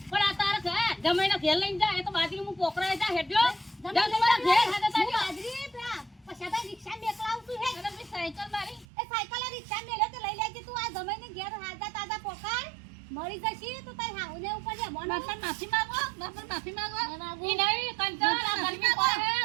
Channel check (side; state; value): left; drops out; at 8.8 s